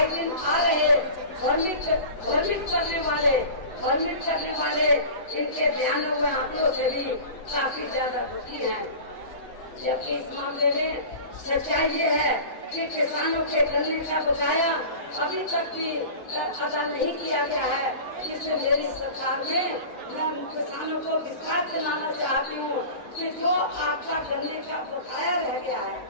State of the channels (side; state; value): right; late; 7.9 ms